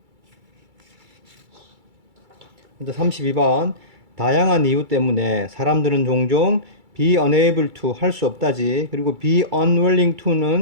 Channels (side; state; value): left; late; 2.3 ms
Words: 먼저 32번 다양한 이유 때문에 사람들은 종종 be unable to 할 수 없다지. 그리고 be unwilling